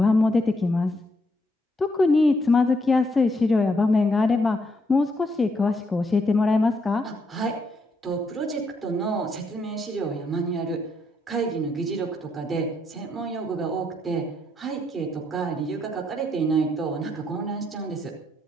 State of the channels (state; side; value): normal; both; correlation 0.76